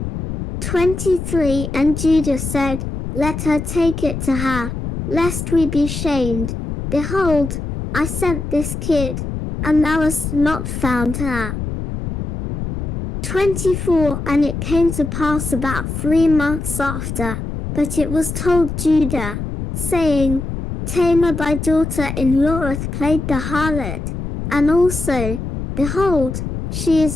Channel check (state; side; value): noise; left; rumble, 5 dB below the sound